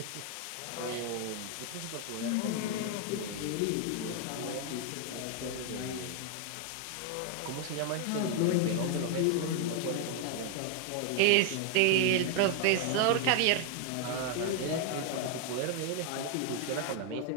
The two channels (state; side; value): different; both; correlation 0.00